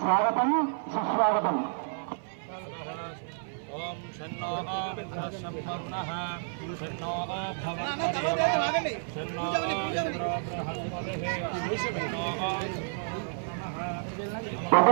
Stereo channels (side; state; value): left; silent; 57 dB below the other